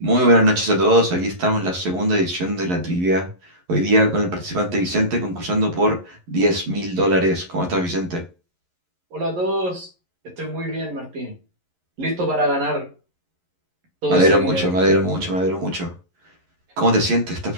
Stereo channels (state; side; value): late; left; 11 ms